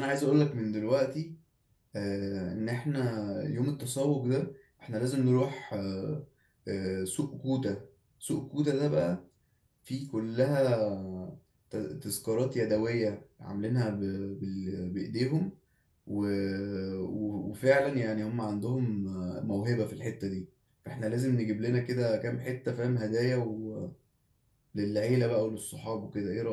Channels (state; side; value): identical; both; correlation 1.00